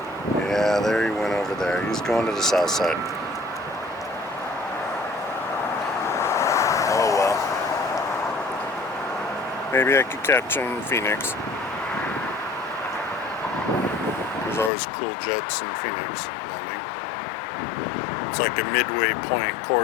Yeah, there he went over there. He's going to the south side. Oh well. Maybe I could catch him in Phoenix. There's always cool jets in Phoenix. It's like a midway point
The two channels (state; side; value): drops out; right; at 14.7 s